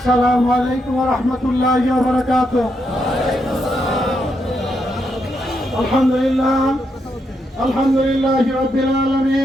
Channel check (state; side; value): normal; both; correlation 0.80